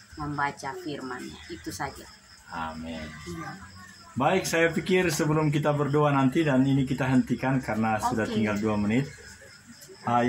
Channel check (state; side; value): identical; both; correlation 1.00